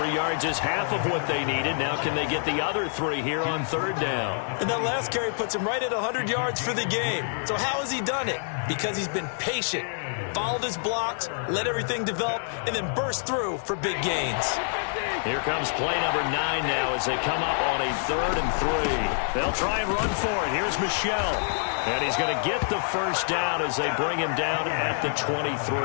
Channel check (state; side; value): silent; right; 60 dB below the other